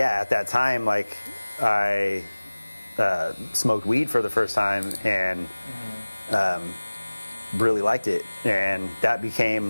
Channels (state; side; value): inverted; both; correlation -1.00